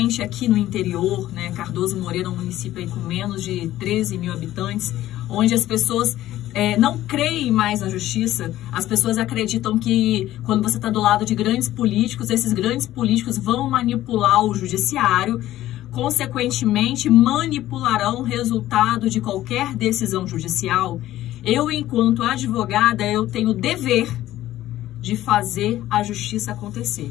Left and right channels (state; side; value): quieter; right; 14.3 dB